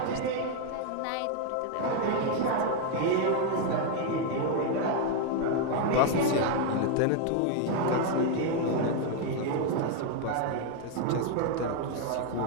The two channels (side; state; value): both; different; correlation 0.01